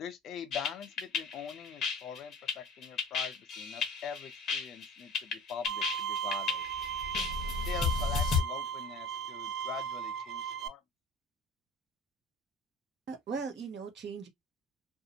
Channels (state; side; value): normal; both; correlation 0.40